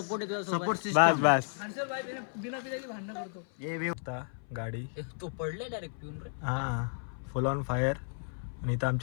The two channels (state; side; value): silent; right; 56 dB below the other